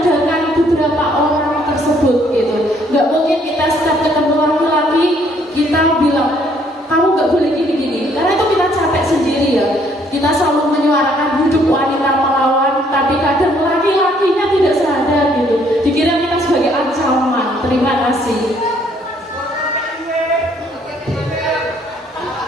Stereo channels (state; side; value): normal; both; correlation 0.65